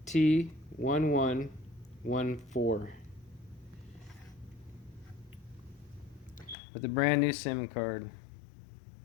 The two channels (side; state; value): right; drops out; at 6.6 s